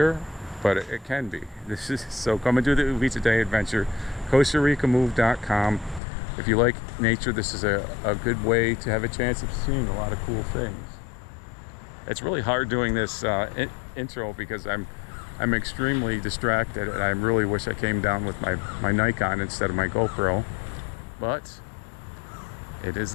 but it can be. So come and do the Uvita Day Adventure. CostaRicaMove.com. If you like nature, this is a good way to have a chance of seeing a lot of cool things. It's really hard doing this intro because I'm extremely distracted, and I really wish I came down with my Nikon instead of my GoPro. But it is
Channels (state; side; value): drops out; right; at 6.0 s